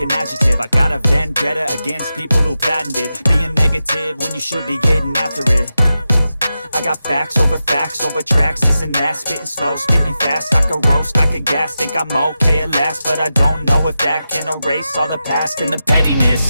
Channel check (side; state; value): both; inverted; correlation -0.91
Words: an adjective. I got a vendetta against people who patented being negative when you should be getting after it. I got facts over tracks, this and that. Spitting slow, spitting fast, I could roast, I could gas. Think I'm okay at last, but I don't know if that can erase all the past. And the